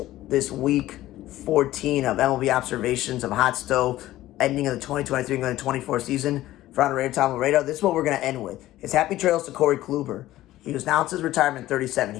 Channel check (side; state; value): right; quieter; 15.3 dB